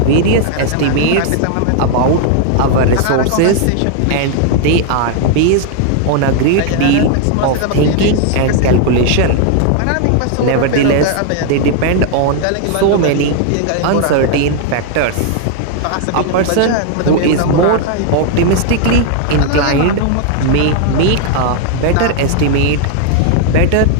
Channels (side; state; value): both; different; correlation 0.00